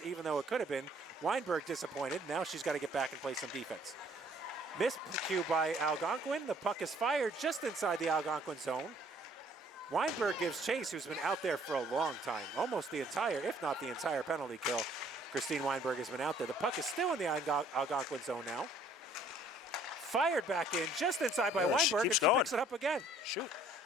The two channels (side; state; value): both; normal; correlation 0.59